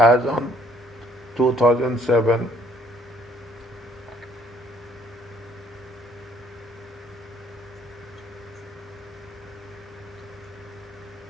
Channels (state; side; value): normal; both; correlation 0.63